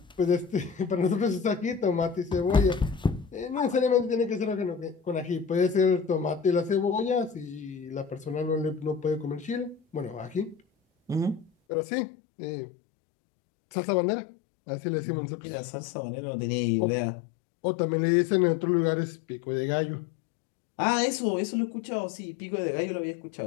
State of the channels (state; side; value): drops out; right; at 11.5 s